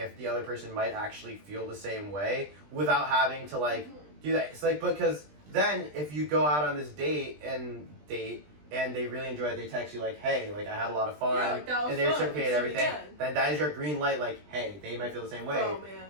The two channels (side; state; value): left; late; 20 ms